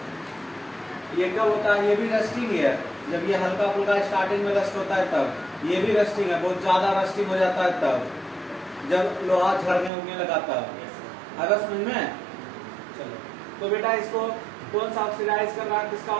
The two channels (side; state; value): left; drops out; at 9.9 s